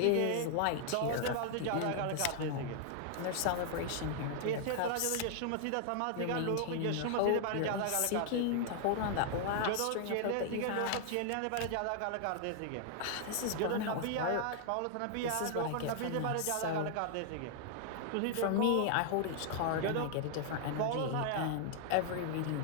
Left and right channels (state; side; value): different; both; correlation 0.00